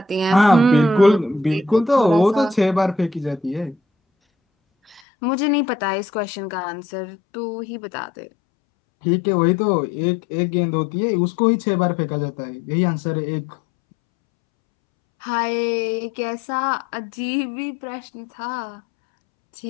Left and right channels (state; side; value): drops out; right; at 5.0 s